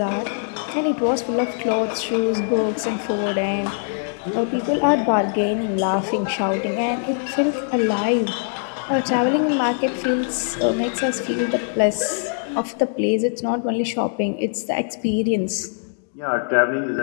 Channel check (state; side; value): silent; right; digital silence